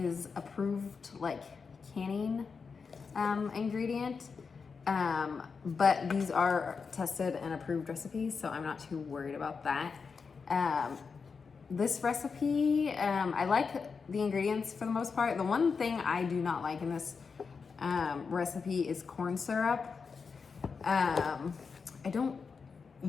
approved, like, canning ingredient, but these are tested and approved recipes, so I'm not too worried about that. This recipe, I like the ingredients for the most part. The one thing I do not like in this recipe is corn syrup. I don't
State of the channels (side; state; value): right; quieter; 5.3 dB